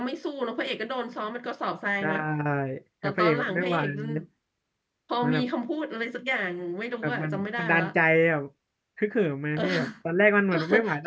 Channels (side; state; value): both; identical; correlation 1.00